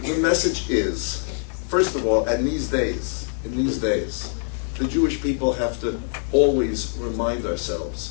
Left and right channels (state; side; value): silent; right; 61 dB below the other